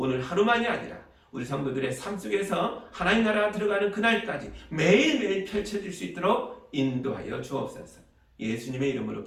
하루만이 아니라 우리 성도들의 삶 속에서 하나님 나라가 들어가는 그날까지 매일매일 펼쳐질 수 있도록 인도하여 주옵소서. 예수님의 이름으로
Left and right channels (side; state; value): both; identical; correlation 1.00